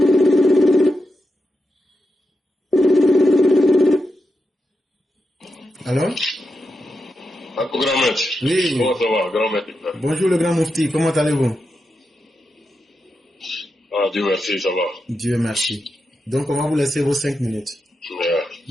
Alors? Grand maître. Oui. Comment ça va, grand maître? Bonjour le grand Moufti, comment allez-vous? Ah, Dieu merci, ça va. Dieu merci. Donc on va vous laisser vos 5 minutes.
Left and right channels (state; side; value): normal; both; correlation 0.88